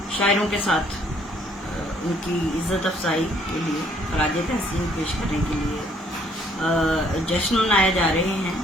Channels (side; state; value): both; normal; correlation 0.64